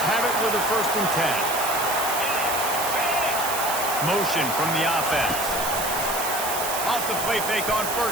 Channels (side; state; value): right; noise; hiss, 4 dB below the sound